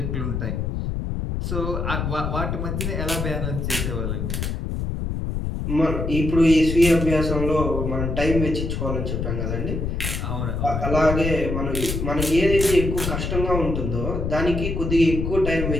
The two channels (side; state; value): left; noise; rumble, 2 dB below the sound